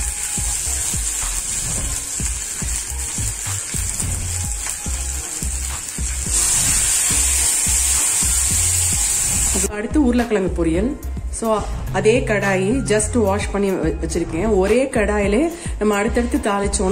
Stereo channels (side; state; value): both; identical; correlation 1.00